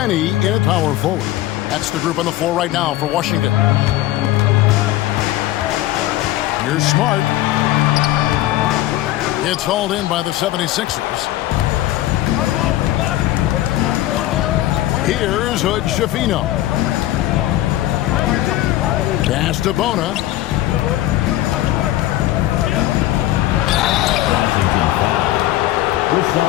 in at power forward. That's the group on the floor right now for Washington. Here's Smart. It's hauled in by the 76ers. Here's Hood Schifino. Pass to Bona.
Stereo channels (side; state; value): right; quieter; 14.9 dB